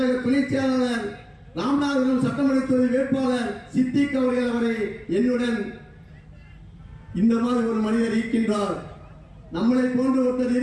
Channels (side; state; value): both; identical; correlation 1.00